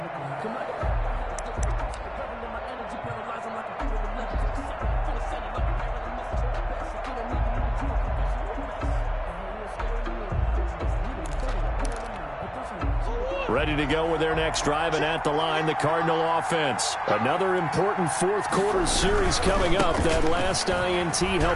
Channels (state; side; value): identical; both; correlation 1.00